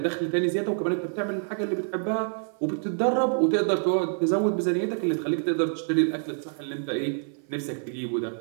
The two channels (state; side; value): silent; left; 57 dB below the other